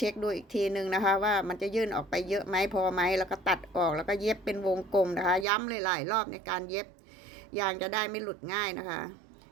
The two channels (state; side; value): drops out; left; at 5.5 s